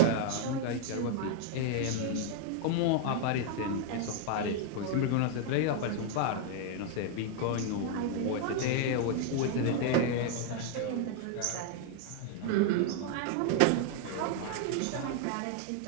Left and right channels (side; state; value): both; different; correlation 0.00